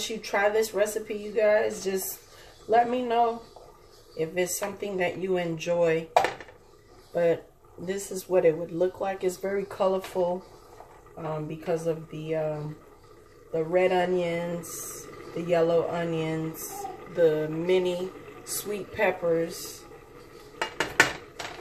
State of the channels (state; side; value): identical; both; correlation 1.00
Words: you try this recipe, you guys, just let me know if it's something that you enjoy. But this is what it would look like. It's very colorful because of the red onions, the yellow onions, the mini sweet peppers,